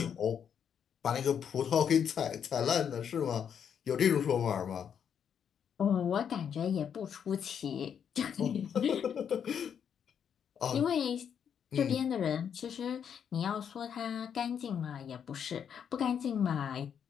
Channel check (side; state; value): right; quieter; 8.0 dB